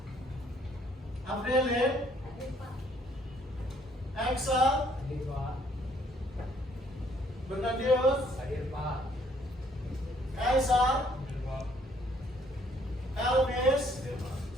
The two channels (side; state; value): both; normal; correlation 0.64